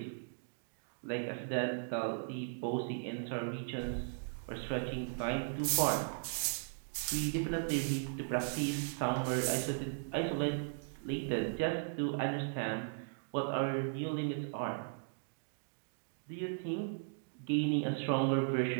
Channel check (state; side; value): silent; left; digital silence